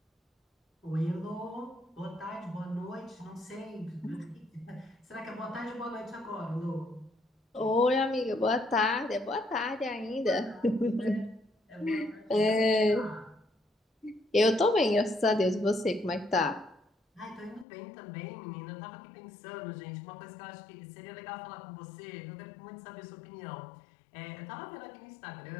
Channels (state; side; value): drops out; right; at 17.7 s